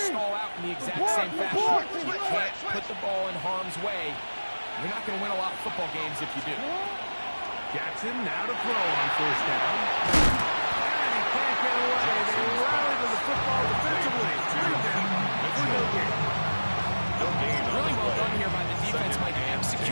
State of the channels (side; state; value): both; inverted; correlation -1.00